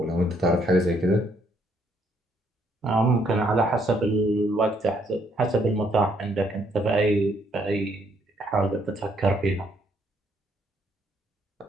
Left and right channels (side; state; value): both; normal; correlation 0.70